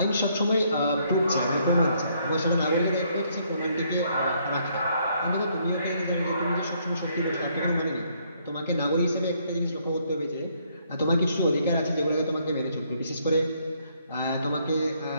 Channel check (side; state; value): both; inverted; correlation -0.69